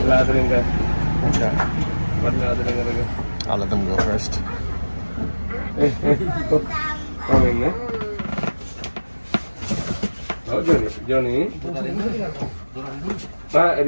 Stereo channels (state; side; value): inverted; both; correlation -1.00